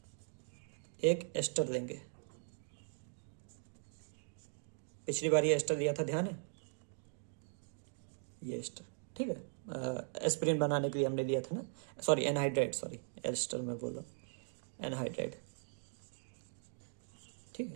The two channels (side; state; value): left; silent; digital silence